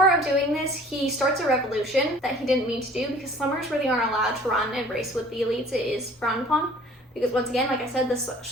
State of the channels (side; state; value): both; normal; correlation 0.50